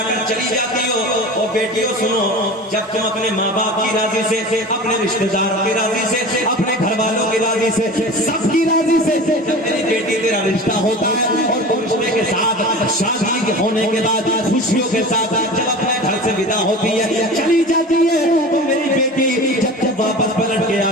کر چلی جاتی ہو۔ او بیٹیوں سنو، جب تم اپنے ماں باپ کی راضی سے، اپنے رشتہ داروں کی راضی سے، اپنے گھر والوں کی راضی سے، سب کی راضی سے جب میری بیٹی تیرا رشتہ ہوتا ہے اور تم رشتے کے ساتھ شادی ہونے کے بعد خوشیوں کے ساتھ جب اپنے گھر سے ودا ہوتی ہے چلی جاتی ہے تو میری بیٹی جب واپس پلٹ کے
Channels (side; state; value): both; normal; correlation 0.35